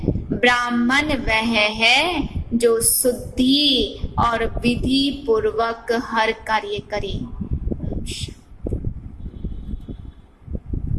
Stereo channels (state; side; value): identical; both; correlation 1.00